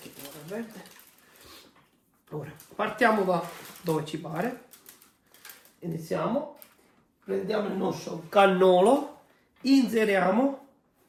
ora verde. Ora partiamo da dove ci pare. Iniziamo. Prendiamo il nostro cannolo. Inseriamo.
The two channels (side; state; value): both; identical; correlation 1.00